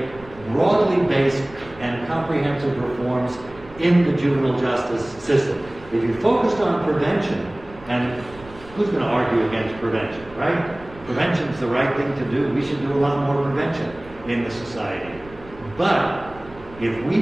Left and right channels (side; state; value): right; noise; rumble, 20 dB below the sound